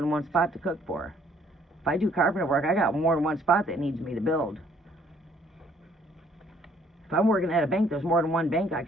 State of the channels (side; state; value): both; normal; correlation 0.63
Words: one spot to cook for. If I do carpenter work, I got more than one spot that needs me to build. If I'm working at a bank, there's more than one bank I